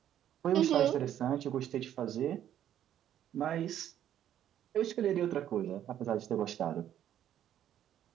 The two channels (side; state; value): left; quieter; 10.9 dB